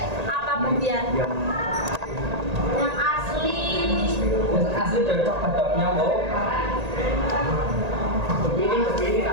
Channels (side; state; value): left; late; 1.8 ms